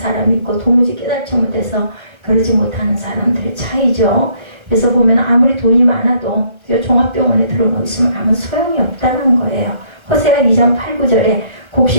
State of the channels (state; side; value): late; left; 1.3 ms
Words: 있고 도무지 깨닫지 못해서 그러지 못하는 사람들의 차이죠. 그래서 보면 아무리 돈이 많아도 종합병원에 들어놓고 있으면 아무 소용이 없다는 거예요. 호세아 2장 8, 9절에